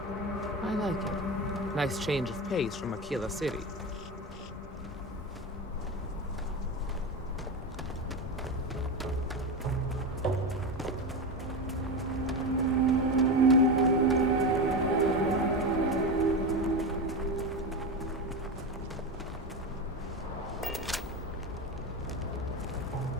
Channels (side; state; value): both; normal; correlation 0.19